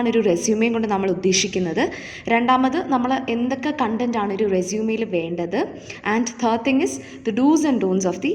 ഒരു റെസ്യൂമേയും കൊണ്ട് നമ്മൾ ഉദ്ദേശിക്കുന്നത്. രണ്ടാമത് നമ്മൾ എന്തൊക്കെ കണ്ടൻറ്റാണ് ഒരു റെസ്യൂമേയിൽ വേണ്ടത്. And third thing is the dos and don'ts of the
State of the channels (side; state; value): both; identical; correlation 1.00